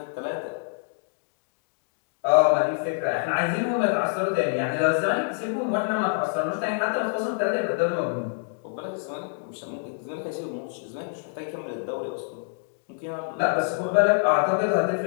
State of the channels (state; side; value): silent; right; digital silence